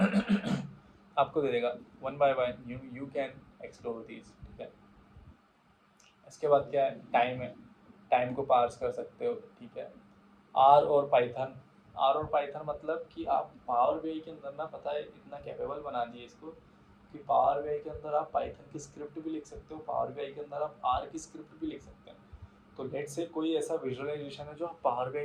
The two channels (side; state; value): both; identical; correlation 1.00